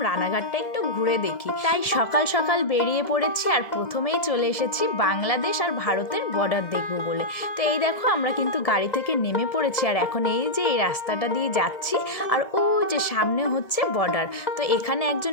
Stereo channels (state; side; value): late; right; 1.7 ms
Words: রানাঘাটটা একটু ঘুরে দেখি। তাই সকাল সকাল বেরিয়ে পড়েছি, আর প্রথমেই চলে এসেছি বাংলাদেশ আর ভারতের বর্ডার দেখবো বলে। তো এই দেখো আমরা কিন্তু গাড়ি থেকে নেমে পড়েছি, আর এখন এই যে এই রাস্তাটা দিয়ে যাচ্ছি, আর ও যে সামনে হচ্ছে বর্ডার। তো এখানে